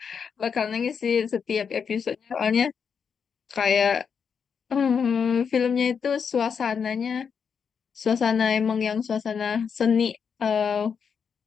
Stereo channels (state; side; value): quieter; right; 6.6 dB